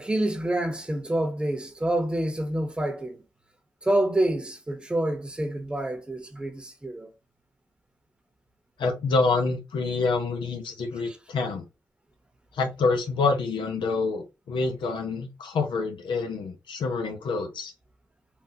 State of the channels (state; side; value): normal; both; correlation 0.77